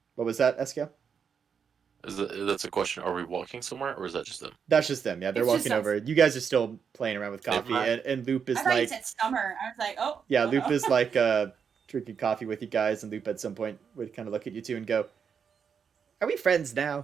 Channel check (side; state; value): left; quieter; 6.8 dB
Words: What was that, Eskel? That's a question. Are we walking somewhere, or is that just them? That's just them. Yeah, they're It's walking just over. You guys are still playing around with Never coffee, mind. and Loop is I thought you like, said summer. I was like, oh. yeah, oh Loop no. is like drinking coffee with you guys, and Loop at some point would kind of look at you two and go, "Are we friends now?"